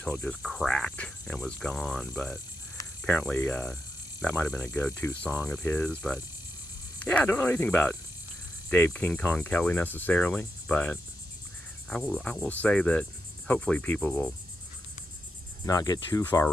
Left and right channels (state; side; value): normal; both; correlation 0.85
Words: it just cracked and was gone. But apparently that might have been a go-to song of his. But yeah, I don't know anything about Dave King Kong Kelly necessarily. But I will say that hopefully people will not get too far